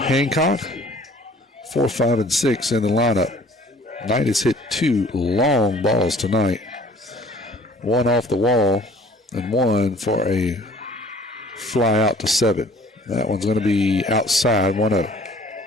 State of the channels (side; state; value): both; normal; correlation 0.53